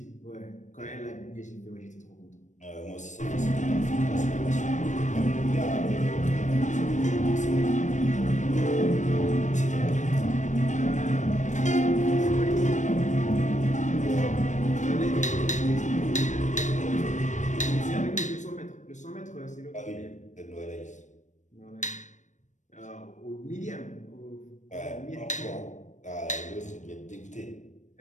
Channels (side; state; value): right; late; 0.35 ms